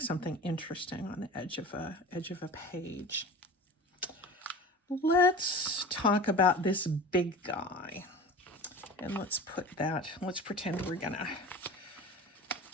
something interesting on the edge of a page. Let's talk about this big guy. And let's pretend we're going to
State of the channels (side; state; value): both; normal; correlation 0.37